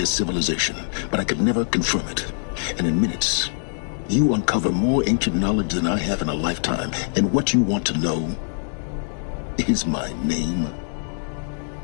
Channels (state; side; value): silent; right; digital silence